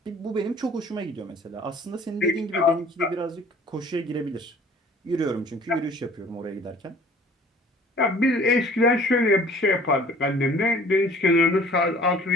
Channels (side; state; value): both; normal; correlation 0.51